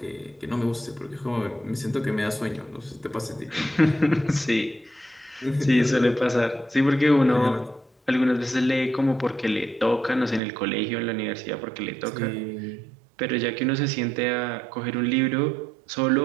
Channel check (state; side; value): drops out; left; at 10.4 s